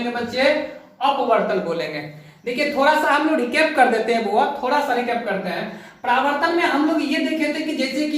बच्चे? अपवर्तन बोलेंगे। देखिए थोड़ा सा हम लोग रिकैप कर देते हैं, वो थोड़ा सा रिकैप करते हैं। परावर्तन में हम लोग ये देखे थे कि जैसे कि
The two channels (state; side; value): identical; both; correlation 1.00